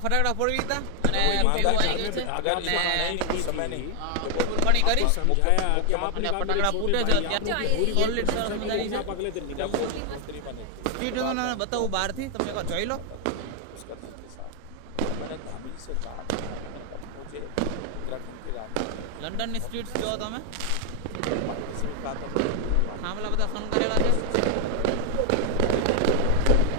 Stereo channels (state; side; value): different; both; correlation 0.00